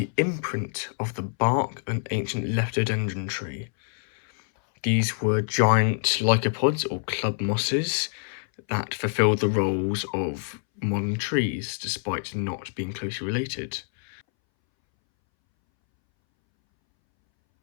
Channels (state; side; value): silent; right; 61 dB below the other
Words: imprint of the bark of an ancient lepidodendron tree. These were giant lycopods or club mosses that fulfilled the roles of modern trees despite not being closely related.